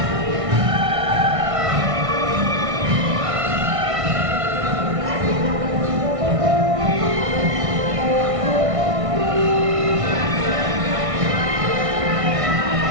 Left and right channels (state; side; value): late; left; 1.6 ms